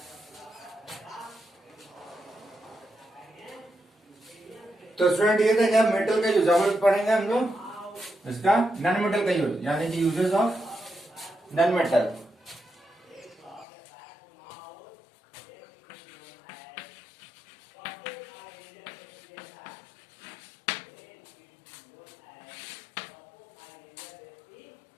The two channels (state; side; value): drops out; right; at 13.7 s